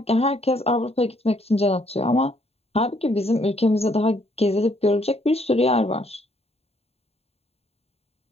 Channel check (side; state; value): right; late; 0.29 ms